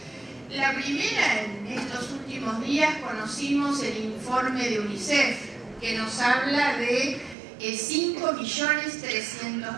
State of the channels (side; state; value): left; drops out; at 7.4 s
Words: La primera, en estos últimos días conocimos el informe de UNICEF, que nos habla de